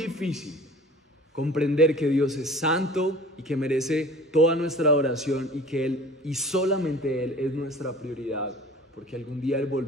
comprender que Dios es santo y que merece toda nuestra adoración y que Él y solamente Él es nuestra prioridad, porque algún día Él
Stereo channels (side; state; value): both; normal; correlation 0.44